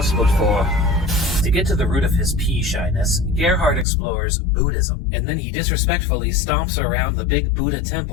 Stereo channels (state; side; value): drops out; right; at 3.9 s